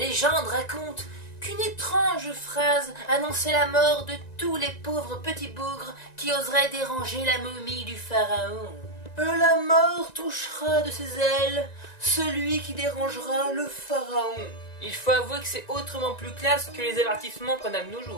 raconte qu'une étrange phrase annonçait la mort de tous les pauvres petits bougres qui oseraient déranger la momie du pharaon. La mort touchera de ses ailes celui qui dérangera le pharaon. Il faut avouer que c'est autrement plus classe que les avertissements qu'on a de nos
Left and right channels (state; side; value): late; right; 1.9 ms